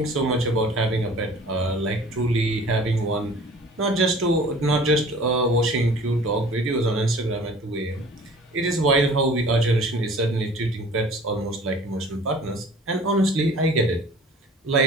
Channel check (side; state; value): both; normal; correlation 0.47